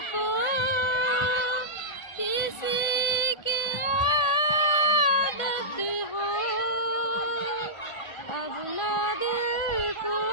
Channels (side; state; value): right; late; 1.5 ms